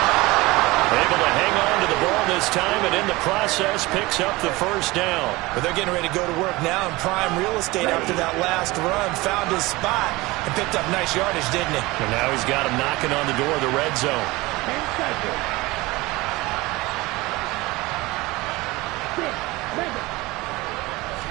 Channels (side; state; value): left; quieter; 21.3 dB